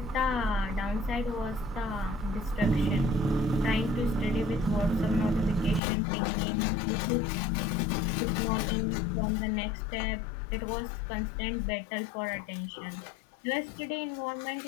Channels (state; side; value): drops out; right; at 5.8 s